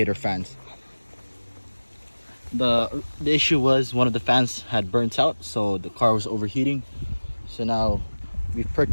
fans. The issue was one of the fans had burnt out, so the car was overheating. So now we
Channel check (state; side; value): inverted; both; correlation -1.00